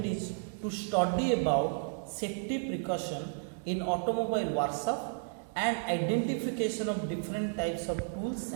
is to study about safety precaution in automobile workshop and identification of different types of tools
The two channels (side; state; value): left; silent; digital silence